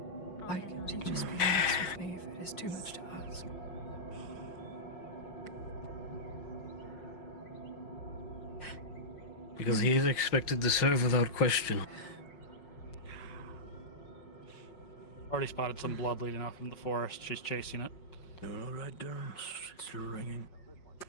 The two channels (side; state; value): right; late; 5.5 ms